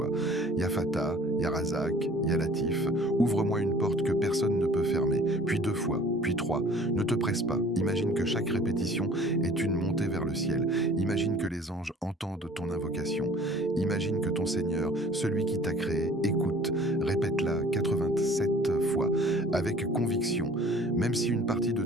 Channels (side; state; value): both; normal; correlation 0.50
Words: Ya Fattah, Ya Razzaq, Ya Latif, ouvre-moi une porte que personne ne peut fermer, puis 2 fois, puis 3. Ne te presse pas, imagine que chaque répétition est une montée vers le ciel. Imagine que les anges entendent ton invocation. Imagine que ton Seigneur, celui qui t'a créé, écoute. écoute, répète-la 87 fois, avec conviction. Même si une partie de